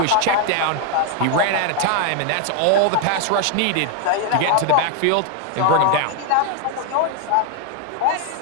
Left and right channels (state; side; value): different; both; correlation 0.00